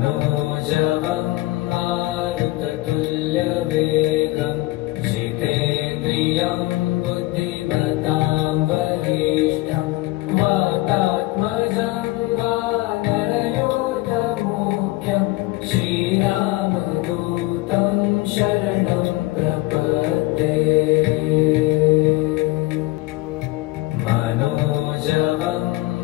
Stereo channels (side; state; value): right; quieter; 19.2 dB